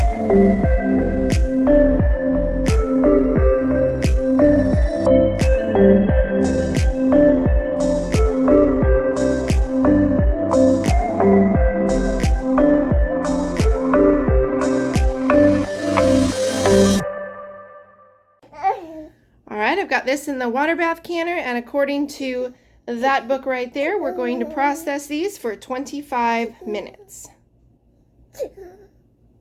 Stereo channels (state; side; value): identical; both; correlation 1.00